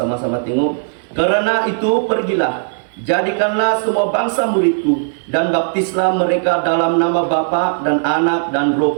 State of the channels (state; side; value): silent; left; 58 dB below the other